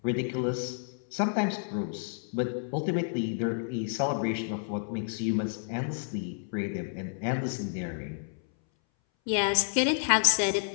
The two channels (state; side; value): silent; right; 58 dB below the other